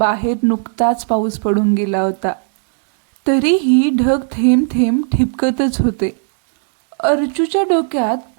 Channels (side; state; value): left; silent; digital silence